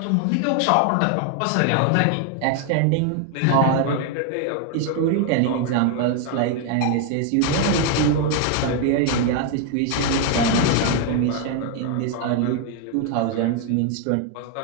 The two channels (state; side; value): different; both; correlation 0.01